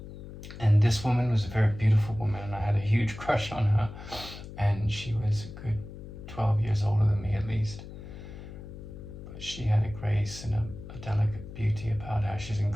And this woman was a very beautiful woman, and I had a huge crush on her, and she was a good 12 years older than me at least. But she had a grace and a delicate beauty about her. She's an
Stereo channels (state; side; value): noise; left; hum, 13 dB below the sound